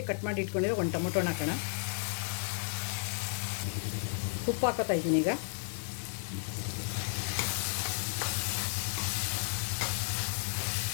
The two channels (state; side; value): silent; right; digital silence